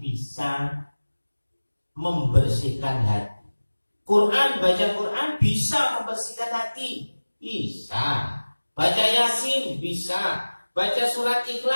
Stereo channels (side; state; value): both; inverted; correlation -1.00